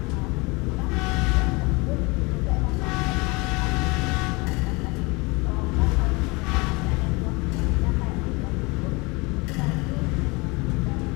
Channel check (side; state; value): right; quieter; 26.3 dB